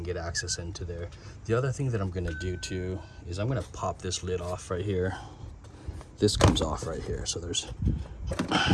get access into there. The other thing that I'm gonna do too is I'm gonna pop this lid off right here. This comes off right here, so there's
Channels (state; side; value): identical; both; correlation 1.00